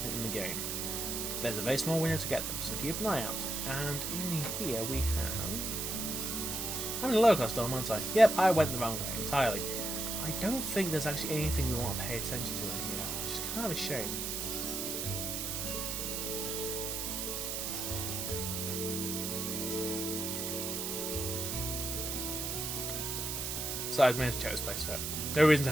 in the game. There's a very small window to get them, so keep an eye out. And in here we have... I'm in a lower class dorm, aren't I? Yep, I went the wrong way entirely. I don't think there's actually anything we want to pay attention to in here, which is kind of a shame. Besides, we have to check this place out. No reason to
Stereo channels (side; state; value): right; noise; hiss, 2 dB below the sound